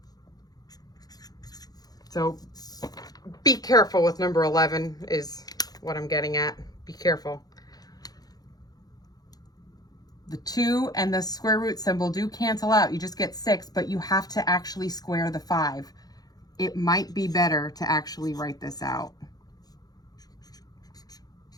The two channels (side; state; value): right; late; 0.19 ms